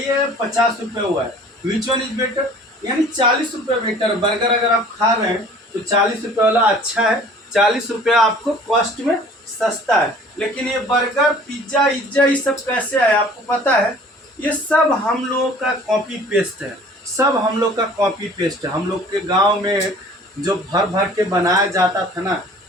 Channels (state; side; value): normal; both; correlation 0.49